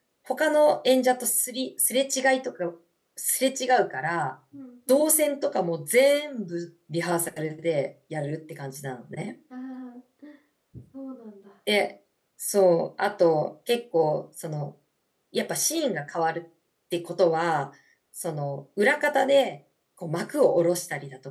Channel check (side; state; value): both; identical; correlation 1.00